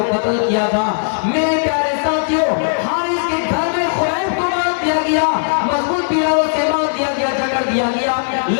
قتل کیا تھا. میرے پیارے ساتھیوں, حارث کے گھر میں خبیب کو مار دیا گیا, مضبوط پیلوں سے مار دیا گیا, جکڑ دیا گیا,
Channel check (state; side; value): silent; right; digital silence